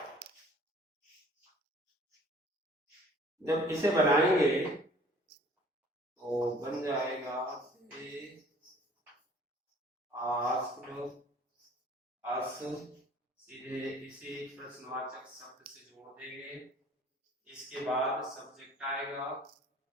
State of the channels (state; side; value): normal; both; correlation 0.52